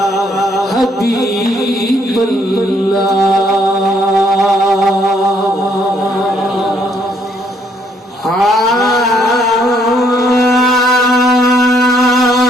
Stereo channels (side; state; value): both; normal; correlation 0.69